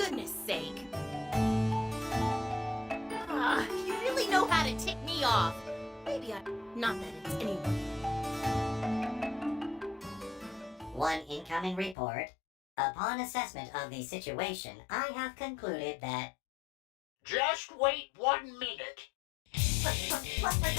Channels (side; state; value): right; drops out; at 12.0 s